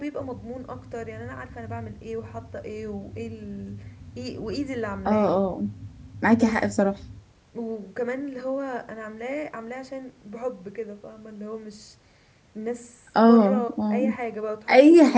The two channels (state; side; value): identical; both; correlation 1.00